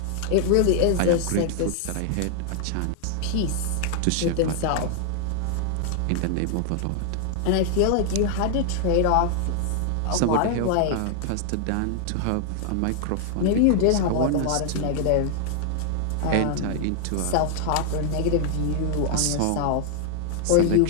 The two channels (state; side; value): different; both; correlation 0.00